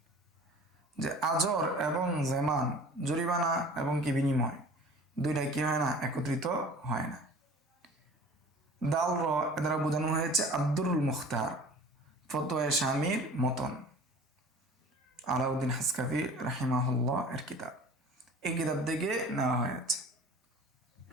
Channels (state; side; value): normal; both; correlation 0.43